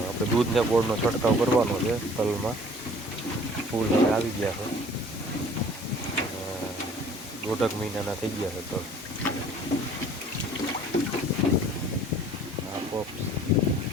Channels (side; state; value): both; normal; correlation 0.51